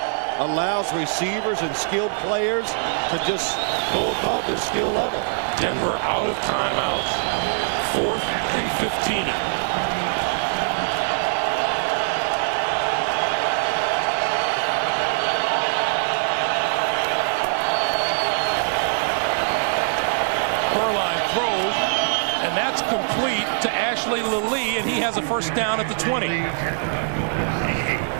allows receivers and skilled players to just go above their skill level. Denver out of timeouts. 4th and 15. Throws, and that's complete to Ashley Lilly, and he has a first down at the 20.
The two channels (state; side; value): silent; left; digital silence